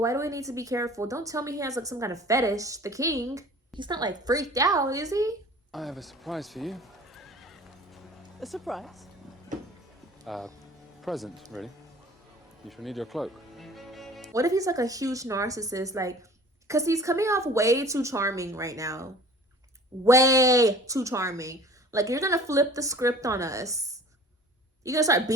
do we need to be careful? Don't tell me he has like some kind of fetish. The king. He's not like freaked out, is he? I have a surprise for you. A surprise? Present, really. You shall need your cloak. What if he's like a huge narcissist? Like, because he's coming off way too charming right now. Way too charming. Like, you're gonna flip the script on us. You gonna start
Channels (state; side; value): normal; both; correlation 0.46